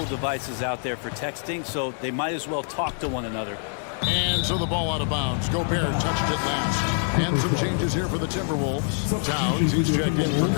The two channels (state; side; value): silent; right; 55 dB below the other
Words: devices out there for texting, so they might as well talk to one another. And so the ball out of bounds. Gobert touched it last. And some changes here for the Timberwolves. Towns, he's checked in for